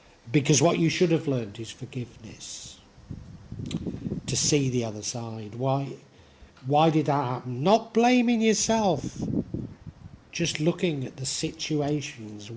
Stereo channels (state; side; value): identical; both; correlation 1.00